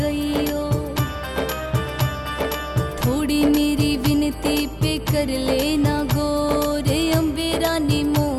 थोड़ी मेरी विनती पे कर लेना गौर, अम्बे रानी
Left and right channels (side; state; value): both; identical; correlation 1.00